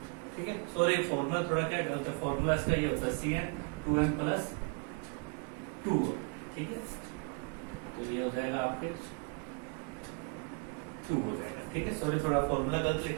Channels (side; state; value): left; quieter; 36.4 dB